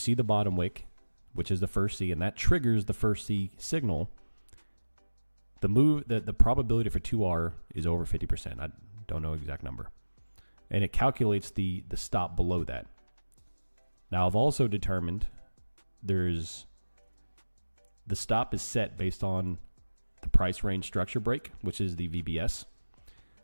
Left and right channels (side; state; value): both; inverted; correlation -1.00